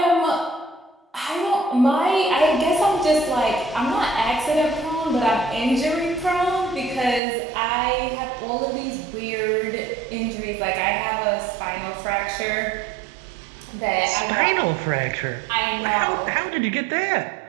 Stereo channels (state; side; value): drops out; left; at 7.2 s